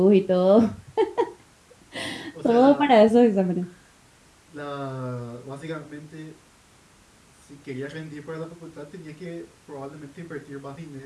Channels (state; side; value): identical; both; correlation 1.00